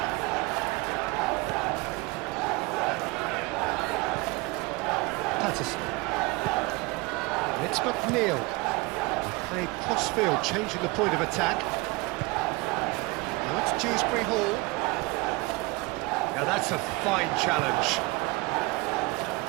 it's McNeil. Played cross-field, changing the point of attack. Now it's Dewsbury Hall. Now that's a fine challenge.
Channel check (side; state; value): left; quieter; 24.8 dB